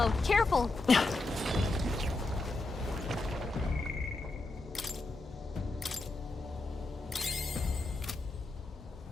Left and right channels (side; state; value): right; quieter; 3.1 dB